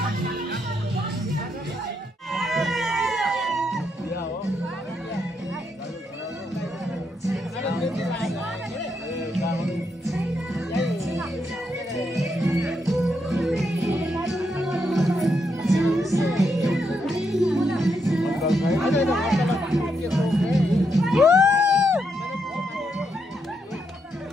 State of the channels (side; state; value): both; normal; correlation 0.80